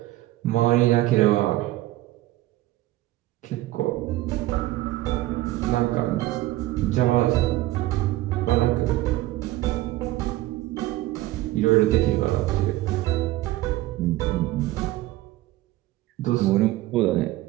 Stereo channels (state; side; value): quieter; left; 16.7 dB